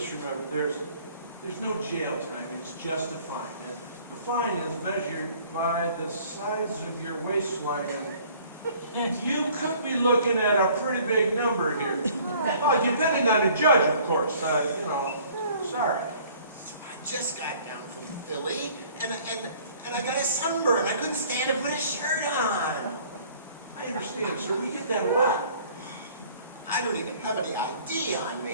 remember, there's no jail time, it's just a fine. And the fine is measured by the size of your waistline, and you could be looking at a pretty big number here. Oh, depending on the judge, of course, you know, sorry. So I just got down from Philly, and I got a sunburn. I couldn't stand to put a shirt on. I understand, sir, we get that a lot. I don't even have any ID on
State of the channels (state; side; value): inverted; both; correlation -0.54